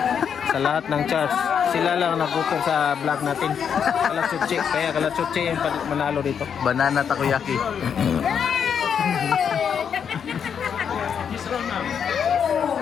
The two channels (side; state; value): right; quieter; 7.5 dB